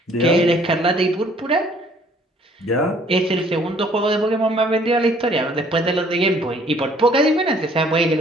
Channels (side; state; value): both; normal; correlation 0.59